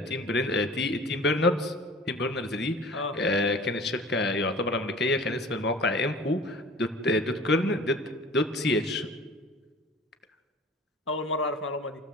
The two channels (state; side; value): normal; both; correlation 0.44